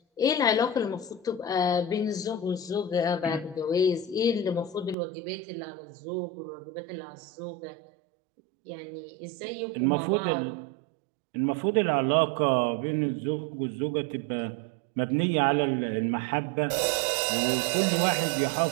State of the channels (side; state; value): left; drops out; at 5.0 s